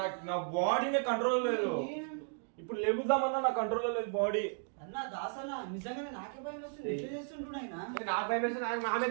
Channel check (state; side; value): silent; left; 54 dB below the other